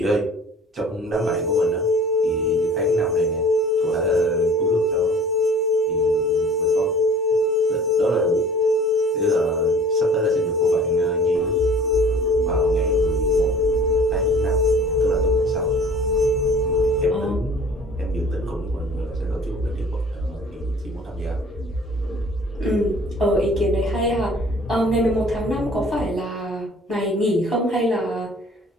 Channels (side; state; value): both; normal; correlation 0.48